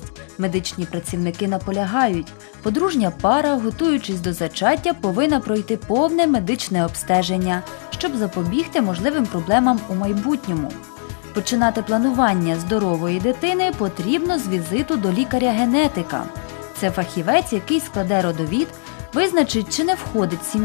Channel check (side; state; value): right; silent; 56 dB below the other